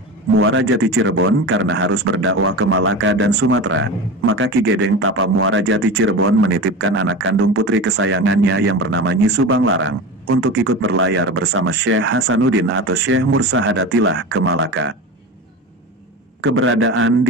Muara Jati Cirebon karena harus berdakwah ke Malaka dan Sumatera, maka Ki Gedeng Tapa Muara Jati Cirebon menitipkan anak kandung putri kesayangannya yang bernama Nyi Subang Larang, untuk ikut berlayar bersama Syekh Hasanuddin atau Syekh Mursahadatillah ke Malaka. Keberadaan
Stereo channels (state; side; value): normal; both; correlation 0.28